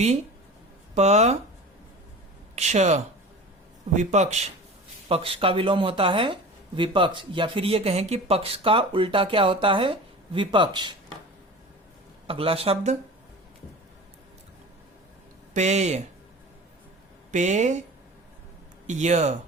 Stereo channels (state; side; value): normal; both; correlation 0.36